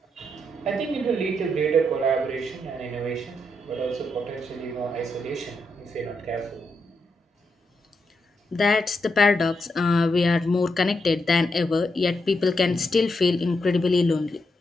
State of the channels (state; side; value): normal; both; correlation 0.82